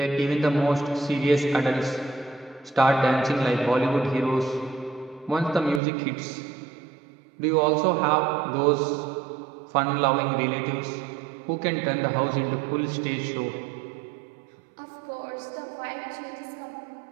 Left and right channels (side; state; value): left; drops out; at 5.8 s